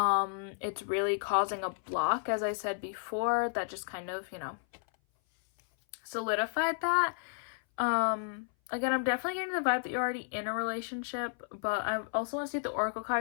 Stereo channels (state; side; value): silent; right; 56 dB below the other